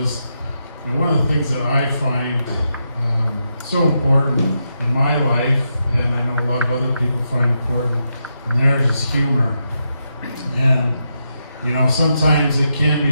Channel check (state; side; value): inverted; both; correlation -0.84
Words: one of the things that I find so important in my life, and I know a lot of other people find important, and theirs is humor. And sometimes it can be